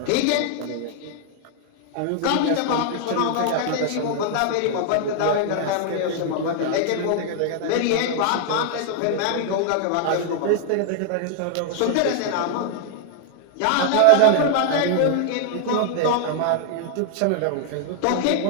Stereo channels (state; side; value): different; both; correlation 0.00